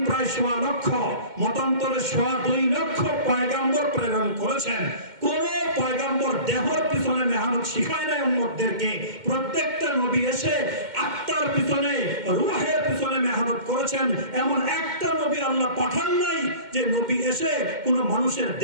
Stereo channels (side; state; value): left; late; 2.1 ms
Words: প্রায় 1.25 লক্ষ, মতান্তরে 2.25 লক্ষ পয়গম্বর প্রেরণ করেছেন। কোন পয়গম্বর দেহর পিছনে মেহনত শিখায় নাই উম্মতদেরকে। প্রত্যেকটা নবী এসে আত্মার পিছনে, রূহের পিছনে মেহনত করেছেন। এমন একটা নবী আল্লাহ পাঠান নাই যে নবী এসে কোন মানুষের